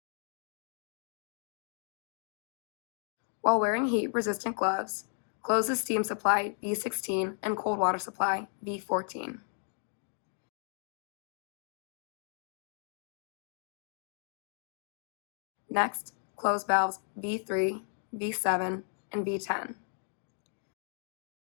While wearing heat-resistant gloves, close the steam supply V16 and cold water supply V14. Next, close valves V3, V7, and V10.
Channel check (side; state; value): right; silent; 55 dB below the other